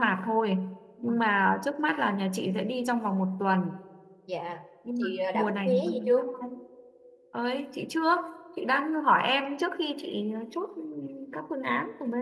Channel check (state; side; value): identical; both; correlation 1.00